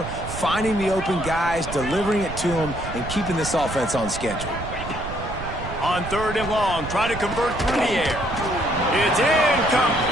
finding the open guys, delivering it to them, and keeping this offense on schedule. On third and long, try to convert through the air. It's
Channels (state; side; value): noise; right; rumble, 9 dB below the sound